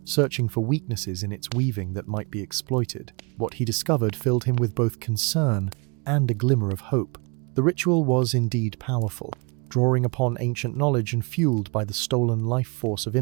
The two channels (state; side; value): quieter; left; 31.2 dB